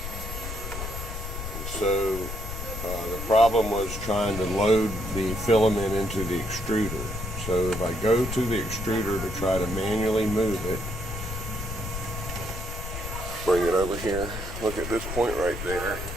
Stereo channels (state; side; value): noise; left; rumble, 7 dB below the sound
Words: And so the problem was trying to load the filament into the extruder. So if I go to the extruder to try to manually move it, bring it over here, look at this point right there.